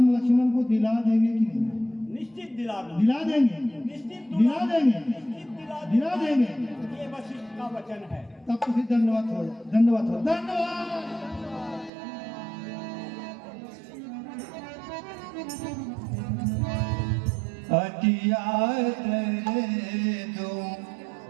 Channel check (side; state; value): left; drops out; at 11.9 s